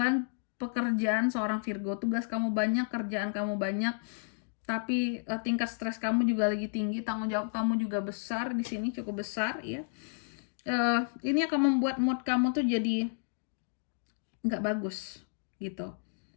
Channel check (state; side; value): silent; right; digital silence